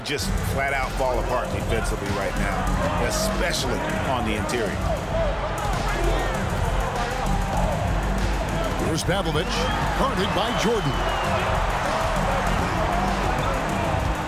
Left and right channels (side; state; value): both; identical; correlation 1.00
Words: just flat-out fall apart defensively right now, especially on the interior. Here's Pavlovich, guarded by Jordan.